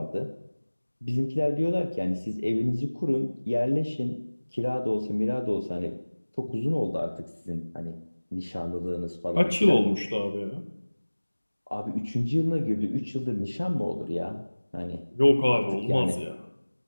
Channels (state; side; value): inverted; both; correlation -1.00